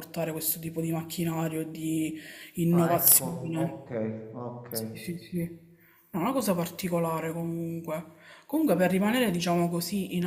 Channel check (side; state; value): both; identical; correlation 1.00